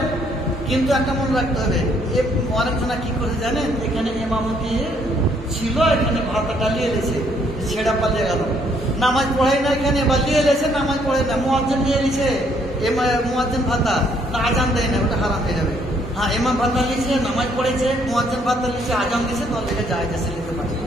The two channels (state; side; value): normal; both; correlation 0.68